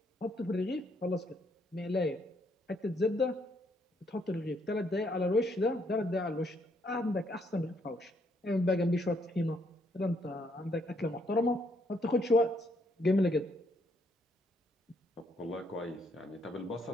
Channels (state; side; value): normal; both; correlation 0.71